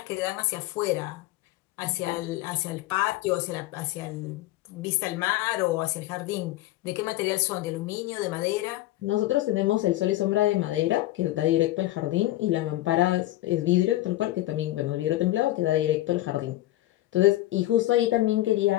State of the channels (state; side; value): quieter; right; 16.2 dB